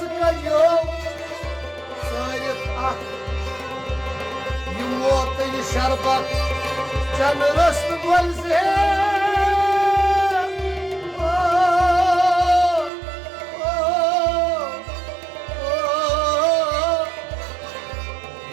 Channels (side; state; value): left; drops out; at 12.9 s